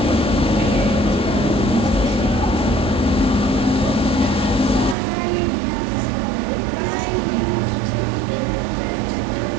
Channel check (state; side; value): drops out; left; at 5.0 s